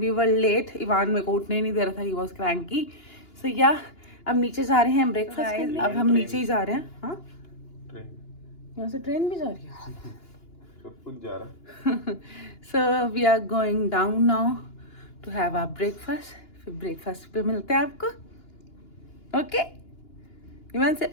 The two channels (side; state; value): right; late; 2.9 ms